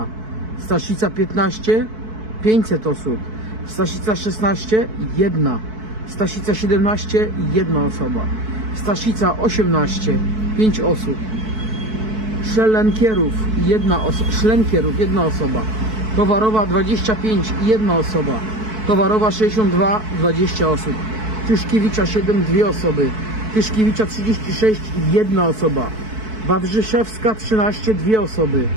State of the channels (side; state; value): left; late; 4.6 ms